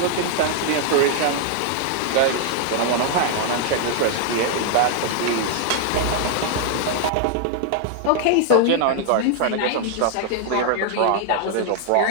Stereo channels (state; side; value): different; both; correlation 0.00